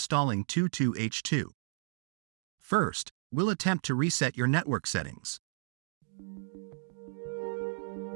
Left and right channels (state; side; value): silent; left; digital silence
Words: 22H2. First, we'll attempt to reset your network settings.